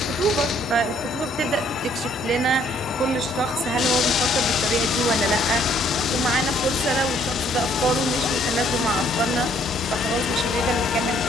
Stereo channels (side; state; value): both; normal; correlation 0.64